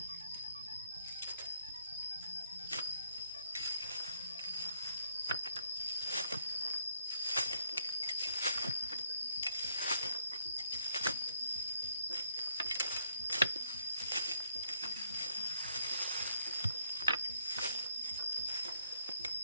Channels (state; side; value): inverted; both; correlation -0.71